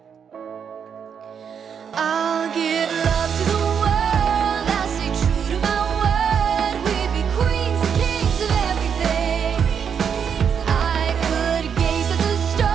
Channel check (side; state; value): left; quieter; 7.3 dB